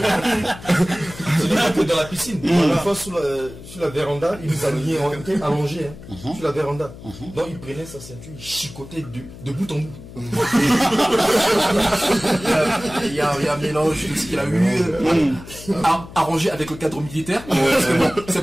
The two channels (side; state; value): left; noise; hum, 16 dB below the sound